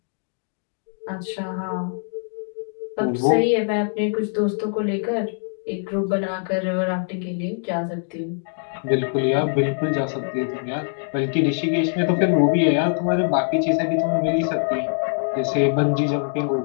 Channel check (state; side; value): silent; right; digital silence